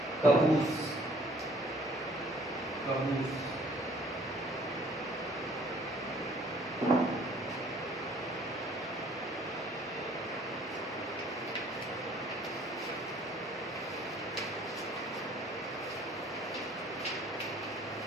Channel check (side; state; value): both; normal; correlation 0.57